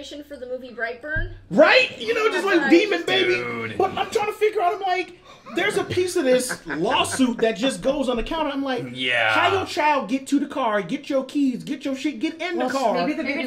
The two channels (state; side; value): identical; both; correlation 1.00